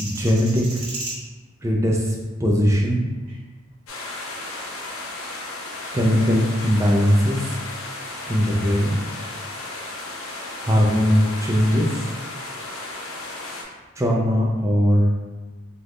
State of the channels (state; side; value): normal; both; correlation 0.84